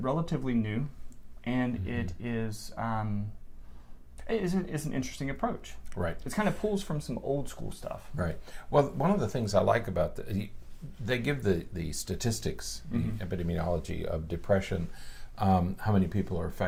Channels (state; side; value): identical; both; correlation 1.00